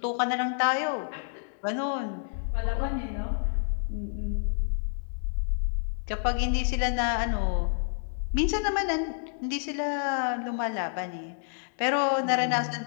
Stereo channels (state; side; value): silent; right; digital silence